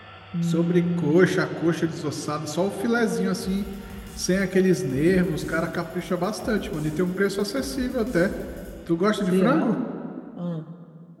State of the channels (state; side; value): identical; both; correlation 1.00